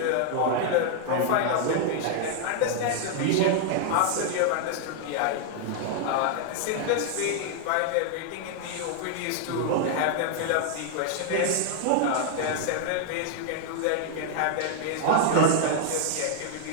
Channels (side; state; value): both; different; correlation 0.00